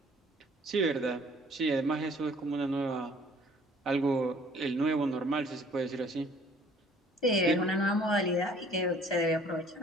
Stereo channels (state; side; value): normal; both; correlation 0.55